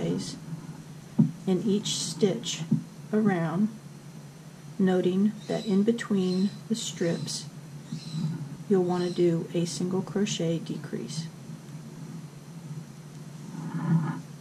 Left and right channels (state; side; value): identical; both; correlation 1.00